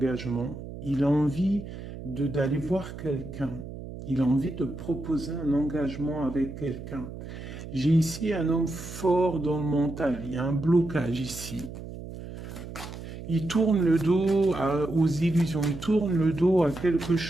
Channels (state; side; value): noise; right; hum, 11 dB below the sound